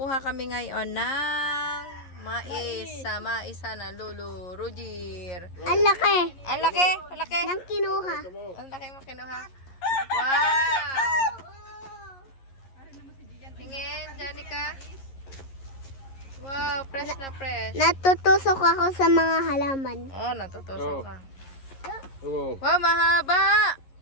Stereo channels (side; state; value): right; late; 11 ms